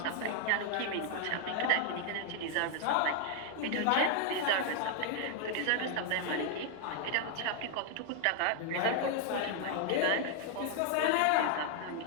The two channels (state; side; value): different; both; correlation 0.00